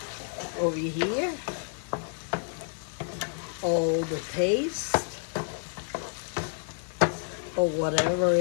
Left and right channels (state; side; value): silent; right; 58 dB below the other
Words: over here. All the paste or whatever